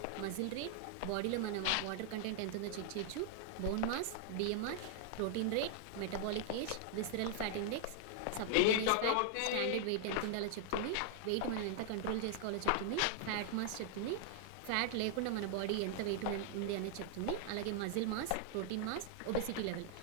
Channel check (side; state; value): both; different; correlation 0.00